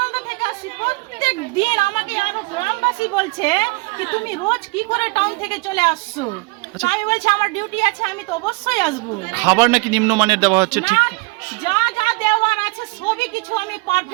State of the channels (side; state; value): left; quieter; 26.2 dB